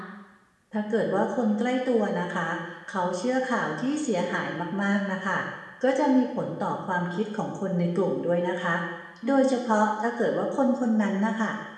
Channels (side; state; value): both; identical; correlation 1.00